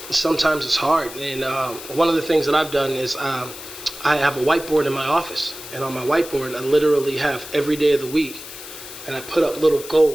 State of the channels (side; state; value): left; noise; hiss, 13 dB below the sound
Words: Sometimes it's hard, and one of the things that I've done is I have a whiteboard in my office, and on my whiteboard I literally have every day of the week, and I put up little